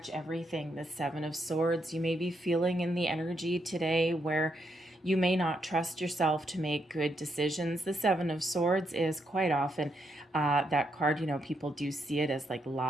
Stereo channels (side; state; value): both; normal; correlation 0.79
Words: everything. The Seven of Swords, you may be feeling in the energy today where you may not trust yourself to make good decisions. The Seven of Swords is quite often that card, you know, people do see it as like